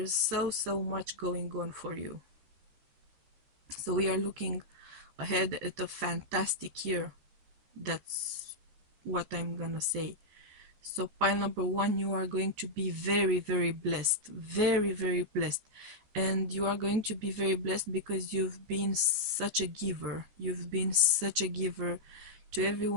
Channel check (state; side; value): late; left; 14 ms